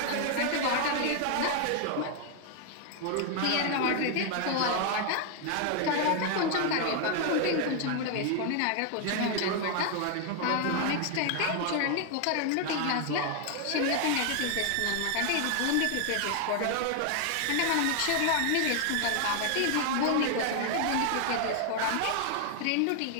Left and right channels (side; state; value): both; different; correlation 0.00